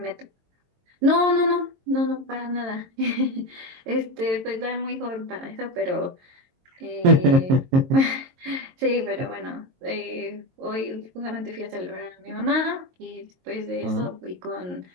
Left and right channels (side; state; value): left; late; 22 ms